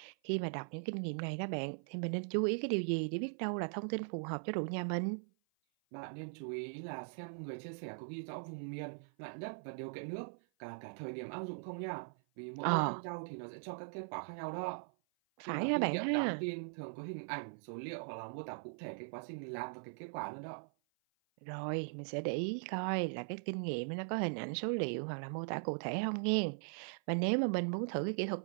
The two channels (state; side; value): silent; left; 51 dB below the other